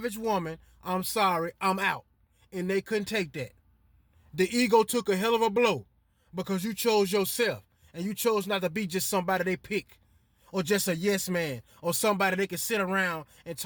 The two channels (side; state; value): both; identical; correlation 1.00